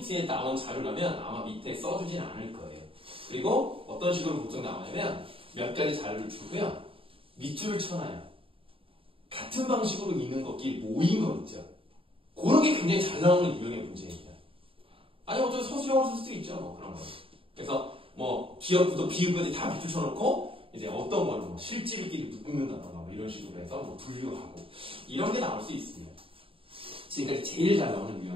나온 자료라면 아마 밑에 써주진 않을 거예요. 그리고 어떤 식으로 보통 나오냐면 몇 가지 자료를 주고요. 밑줄을 쳐놔요. 같은 방식으로 있는 것끼리 모인 거 있죠. 그런 게 굉장히 잘 나오는 유형의 문제입니다. 아니 어쩌면 서술형으로 쓸 수도 있죠. 뭐 그런 거. 그래서 뭐 기역부터 비읍까지 다 밑줄 쳐놓고 이제 어떤 거는 뭐 실질끼리 묶는다던가 뭐 이런 식으로 해서 뭐 분류하고 이런 게 나올 수 있습니다. 지금까지 제일 잘 나오는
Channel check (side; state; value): left; late; 0.26 ms